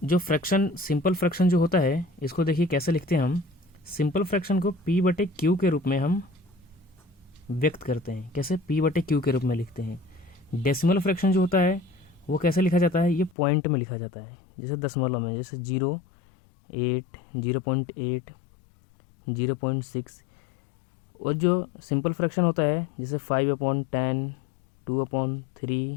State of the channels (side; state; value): right; drops out; at 13.4 s